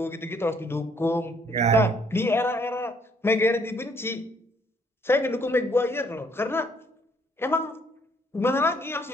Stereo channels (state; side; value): normal; both; correlation 0.66